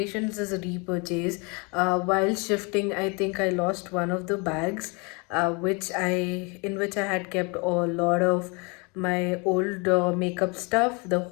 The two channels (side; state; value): right; quieter; 30.8 dB